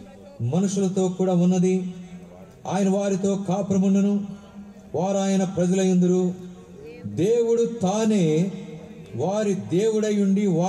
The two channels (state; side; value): identical; both; correlation 1.00